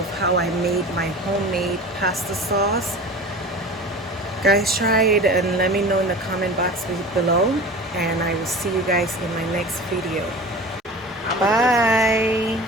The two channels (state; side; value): normal; both; correlation 0.36